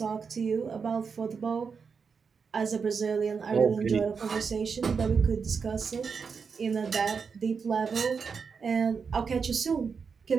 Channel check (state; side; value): quieter; left; 5.7 dB